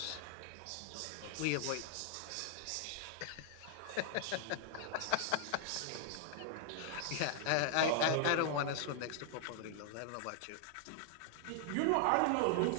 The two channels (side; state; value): both; different; correlation 0.00